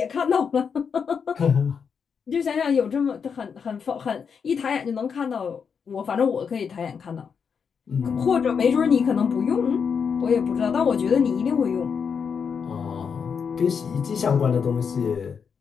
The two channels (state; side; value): quieter; right; 6.4 dB